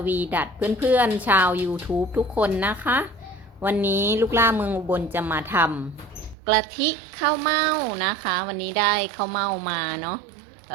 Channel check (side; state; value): left; drops out; at 6.4 s